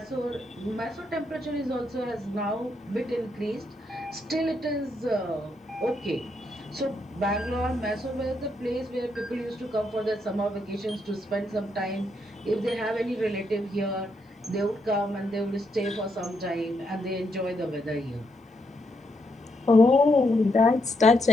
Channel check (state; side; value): normal; both; correlation 0.78